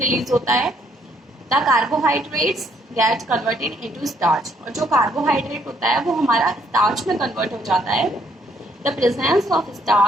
होता है। The carbohydrates get converted into starch, और जो कार्बोहाइड्रेट होता है वो हमारा स्टार्च में कन्वर्ट हो जाता है। The presence of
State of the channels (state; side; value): normal; both; correlation 0.68